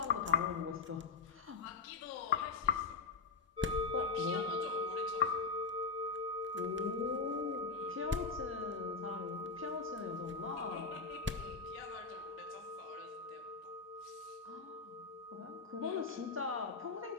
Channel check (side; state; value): right; quieter; 4.7 dB